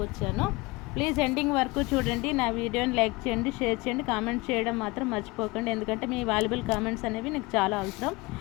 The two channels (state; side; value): quieter; right; 23.4 dB